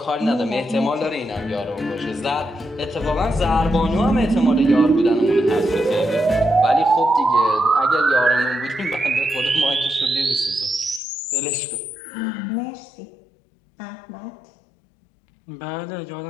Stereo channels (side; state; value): right; drops out; at 11.0 s